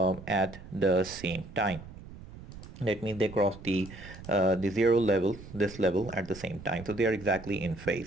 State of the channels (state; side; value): noise; right; rumble, 15 dB below the sound